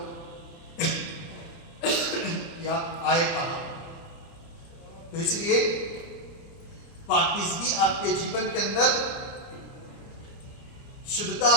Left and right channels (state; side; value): late; right; 30 ms